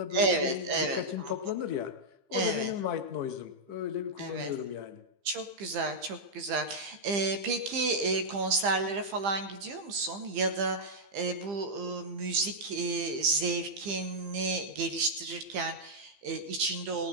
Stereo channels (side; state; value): left; late; 15 ms